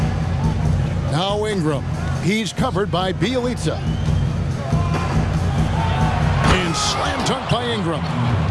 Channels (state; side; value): identical; both; correlation 1.00